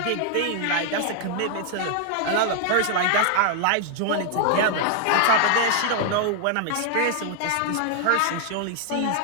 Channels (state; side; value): different; both; correlation 0.00